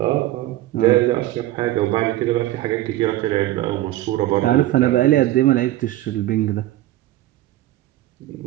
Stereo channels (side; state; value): left; quieter; 15.3 dB